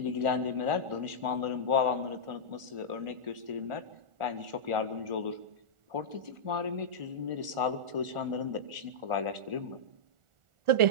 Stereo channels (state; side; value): late; left; 1.4 ms